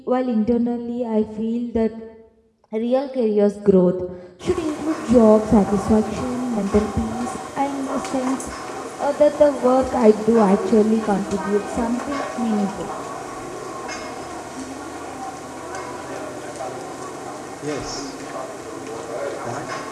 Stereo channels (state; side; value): identical; both; correlation 1.00